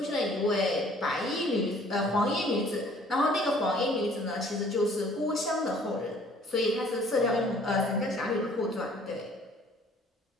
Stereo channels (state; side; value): normal; both; correlation 0.56